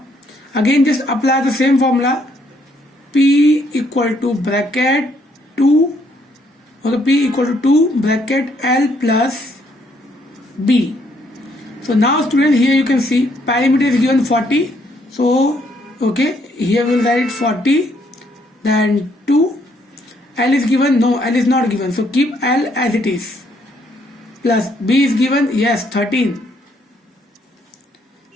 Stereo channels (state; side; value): normal; both; correlation 0.70